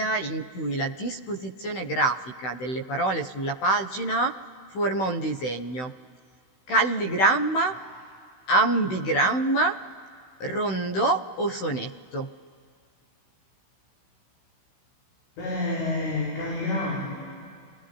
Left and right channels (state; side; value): late; right; 16 ms